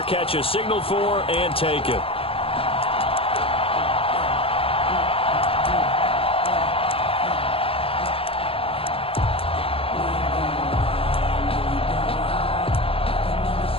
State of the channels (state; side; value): late; right; 0.27 ms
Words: catch is signaled for and taken.